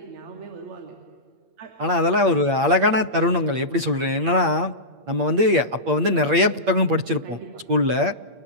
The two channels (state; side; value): late; left; 8.6 ms